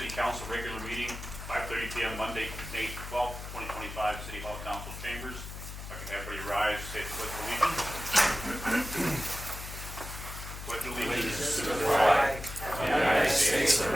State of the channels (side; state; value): left; noise; hum, 10 dB below the sound